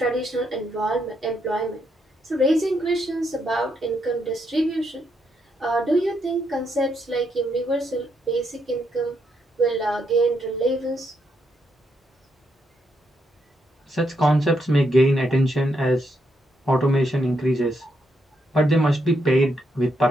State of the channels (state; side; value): normal; both; correlation 0.78